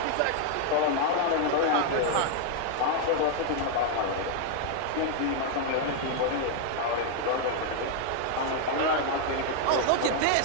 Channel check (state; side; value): different; both; correlation 0.00